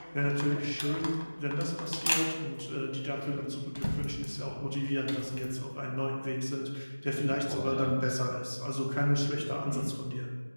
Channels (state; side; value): inverted; both; correlation -1.00